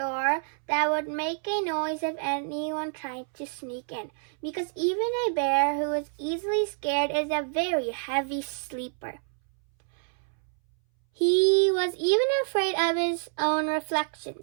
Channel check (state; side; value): silent; left; 60 dB below the other